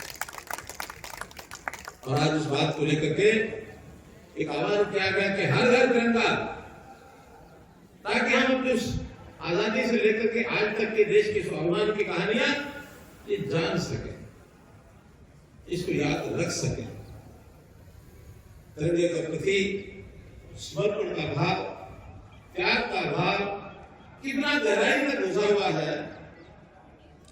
और आज उस बात को लेकर के एक आह्वान किया गया कि हर घर तिरंगा, ताकि हम अपने आजादी से लेकर के आज तक के देश के स्वाभिमान की कहानियां ये जान सके, इसको याद रख सके। तिरंगे के प्रति समर्पण का भाव, त्याग का भाव कितना गहराई तक घुसा हुआ है।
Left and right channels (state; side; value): identical; both; correlation 1.00